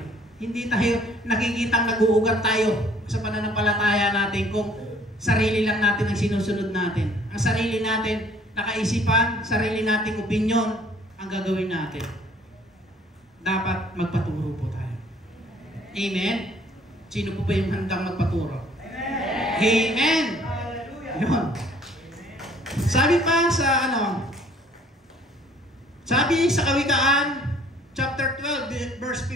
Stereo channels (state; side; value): normal; both; correlation 0.57